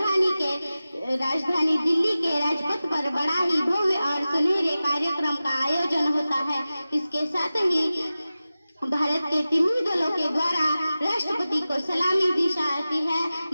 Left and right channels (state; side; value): inverted; both; correlation -0.95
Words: राजधानी दिल्ली के राजपथ पर बड़ा ही भव्य और सुनहरे कार्यक्रम का आयोजन होता है। इसके साथ ही भारत के तीनों दलों के द्वारा राष्ट्रपति को सलामी दी जाती है।